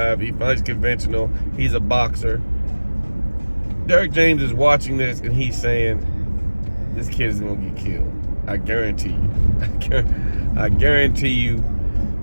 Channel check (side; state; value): both; inverted; correlation -1.00